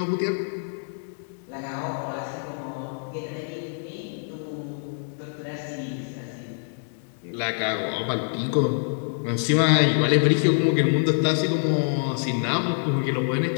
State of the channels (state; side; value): silent; right; digital silence